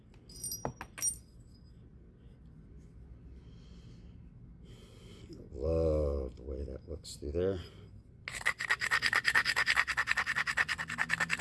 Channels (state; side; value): identical; both; correlation 1.00